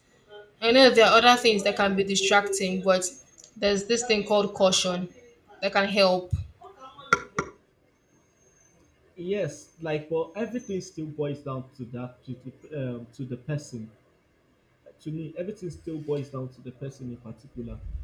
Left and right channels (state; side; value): identical; both; correlation 1.00